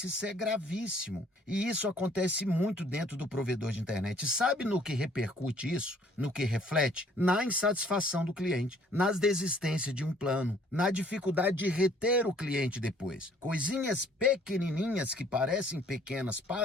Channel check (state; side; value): normal; both; correlation 0.59